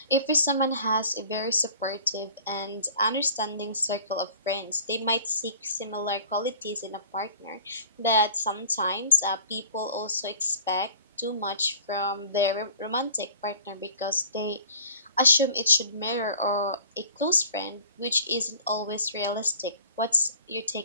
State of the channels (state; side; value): inverted; both; correlation -0.47